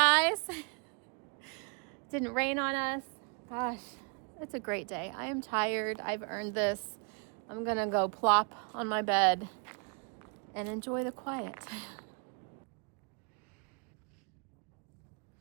Didn't rain on us. Gosh, it's a great day. I am tired. I've earned this. I'm gonna go plop on my bed and enjoy the quiet.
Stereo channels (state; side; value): quieter; left; 37.9 dB